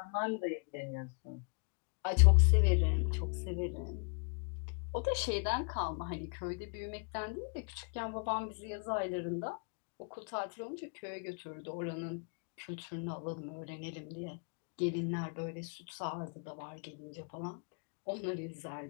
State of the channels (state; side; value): quieter; right; 38.6 dB